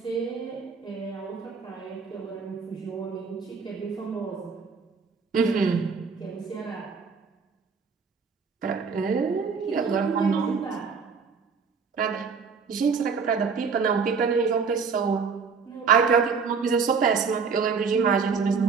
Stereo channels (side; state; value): left; quieter; 5.5 dB